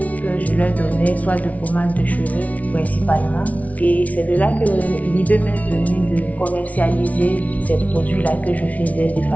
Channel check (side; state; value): right; late; 0.069 ms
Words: que je leur donnais, soit de pommade de cheveux principalement. Et c'est de là que l'idée m'est venue de commercialiser ces produits-là que je faisais de